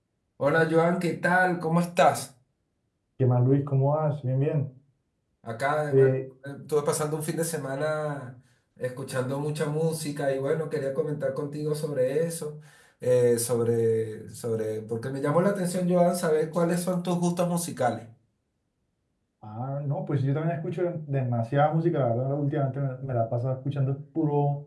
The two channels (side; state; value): both; identical; correlation 1.00